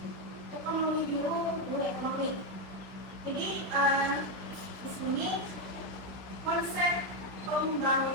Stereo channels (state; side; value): late; left; 16 ms